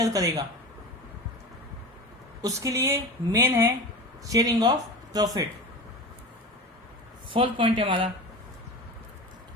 करेगा। उसके लिए मेन है sharing of profit. Fourth point है हमारा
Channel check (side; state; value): both; normal; correlation 0.30